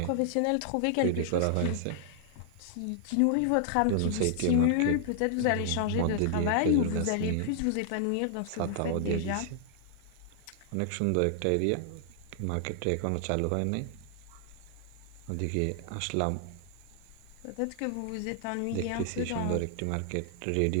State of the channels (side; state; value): both; different; correlation -0.01